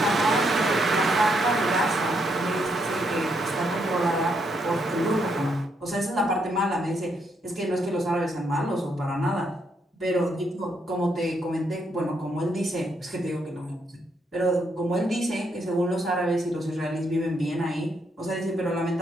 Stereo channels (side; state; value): both; normal; correlation 0.76